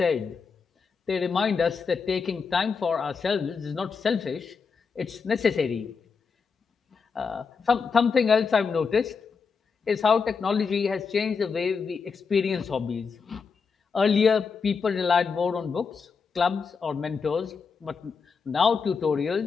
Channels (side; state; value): right; quieter; 5.4 dB